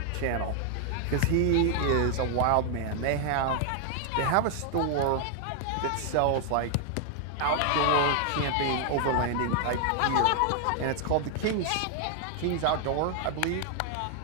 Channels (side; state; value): both; different; correlation 0.00